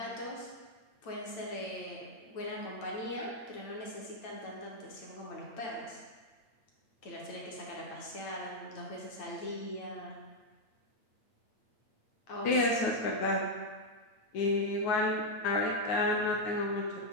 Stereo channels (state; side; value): late; right; 8.9 ms